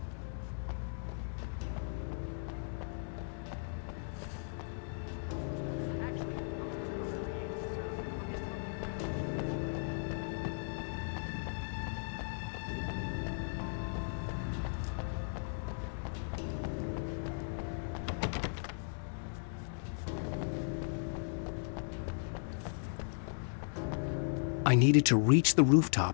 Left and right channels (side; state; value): right; silent; digital silence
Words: I needed to reach the